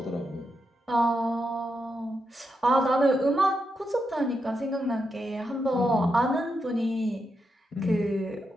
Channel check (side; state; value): both; normal; correlation 0.84